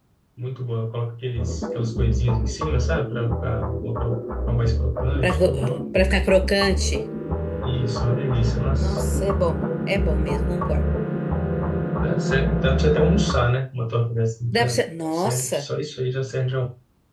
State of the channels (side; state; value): both; identical; correlation 1.00